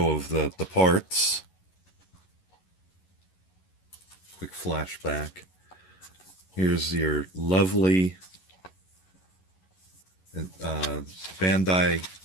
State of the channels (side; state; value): right; late; 11 ms